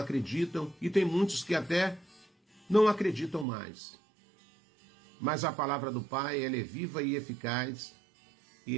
e tem muitos que até não acreditam mais. Mas a palavra do Pai, ela é viva e eficaz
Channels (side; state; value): left; drops out; at 3.5 s